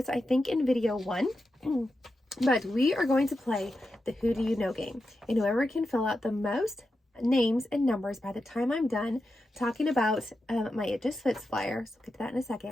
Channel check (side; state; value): both; normal; correlation 0.89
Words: I think, in video 1. But we are going to play the Who Do You Know game. And whoever can fill out the most names and numbers by the time I'm done talking about my It Just Fits flyer, so we'll get to that in a